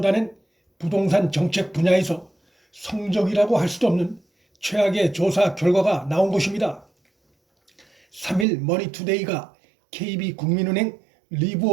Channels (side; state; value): left; drops out; at 8.5 s